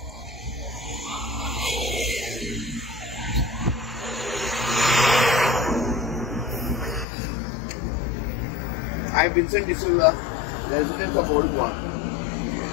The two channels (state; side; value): drops out; right; at 7.1 s